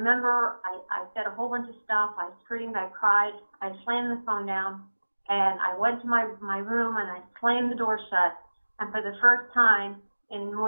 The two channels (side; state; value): both; inverted; correlation -1.00